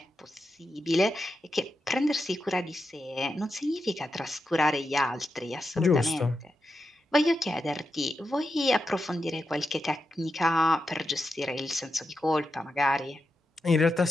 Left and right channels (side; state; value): both; normal; correlation 0.88